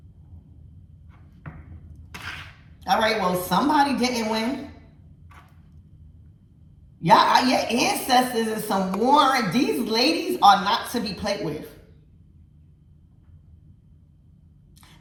All right, well, somebody didn't win. Y'all, your ancestors is some warrant. These ladies are not to be played with.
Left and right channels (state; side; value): identical; both; correlation 1.00